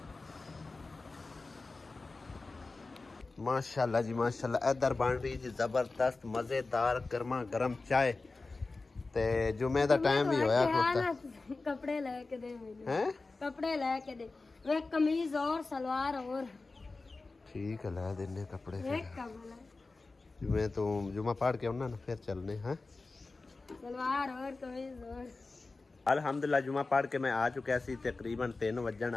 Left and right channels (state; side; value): quieter; right; 3.6 dB